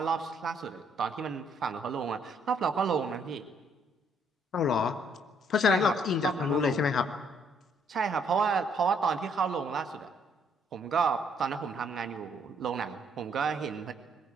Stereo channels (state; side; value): normal; both; correlation 0.67